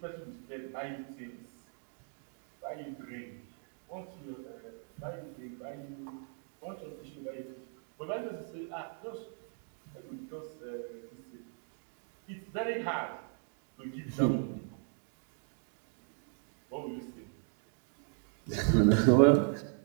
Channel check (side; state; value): left; silent; 53 dB below the other